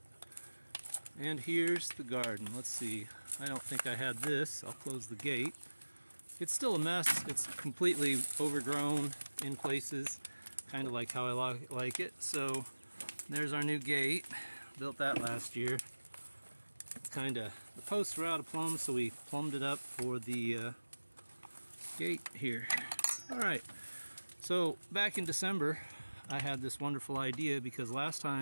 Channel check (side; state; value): both; inverted; correlation -1.00